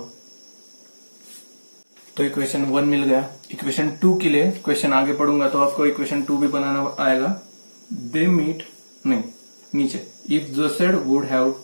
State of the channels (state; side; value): inverted; both; correlation -1.00